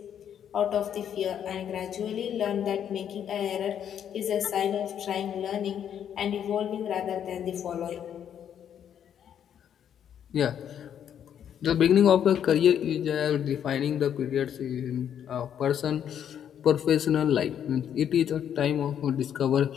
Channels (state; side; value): quieter; right; 9.2 dB